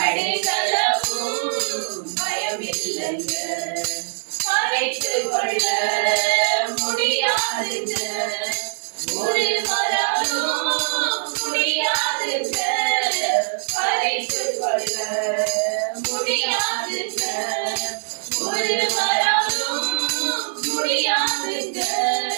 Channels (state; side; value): silent; left; digital silence